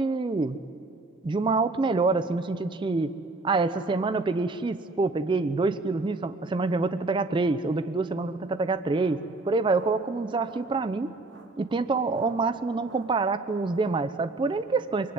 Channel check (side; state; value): left; quieter; 3.2 dB